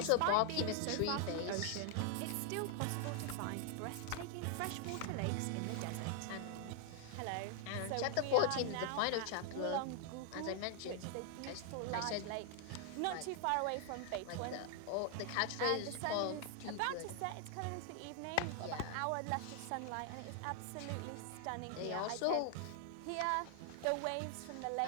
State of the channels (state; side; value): different; both; correlation 0.00